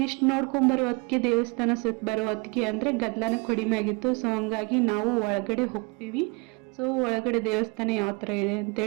ಇಷ್ಟು ನೋಡ್ಕೊಂಬರೋ ಹೊತ್ತಿಗೆ ದೇವಸ್ಥಾನ ಸುತ್ತ ಬರೋ ಹೊತ್ತಿಗೆ ಅಂದರೆ ಗದ್ದಲನ ಕಡಿಮೆ ಆಗಿತ್ತು. ಸೊ ಹಂಗಾಗಿ ನಾವು ಒಳಗಡೆ ಹೋಗ್ತೀವಿ. ಸೊ ಒಳಗಡೆ ದೇವಸ್ಥಾನ ಯಾವ ಥರ ಇದೆ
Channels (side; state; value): left; quieter; 29.6 dB